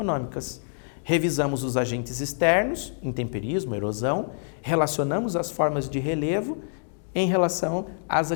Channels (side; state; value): right; silent; digital silence